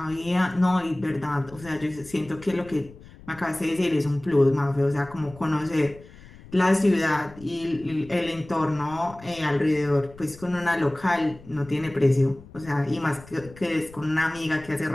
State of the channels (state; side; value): noise; left; rumble, 20 dB below the sound